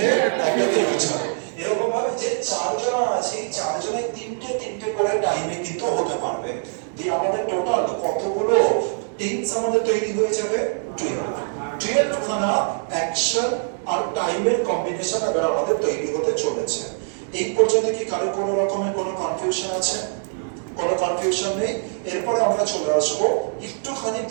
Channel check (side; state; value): left; silent; digital silence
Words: একটা ফিউচারে। এরকম ভাবে যে 4 জন আছে, 4 জনের 3টে করে টাইমে কিন্তু হতে পারবে। দিয়ে আমাদের টোটাল কতগুলো টেন্স আমাদের তৈরি হয়ে যাবে? 12 খানা অ্যাকশন আর টাইমের কম্বিনেশন এবার আমাদের তৈরি হতে চলেছে। এই পর্যন্ত কি কারো কোনো রকমের কোনো কনফিউশন আছে? কোনো কনফিউশন নেই। এরপরে আমরা চলে আসবো একটুখানি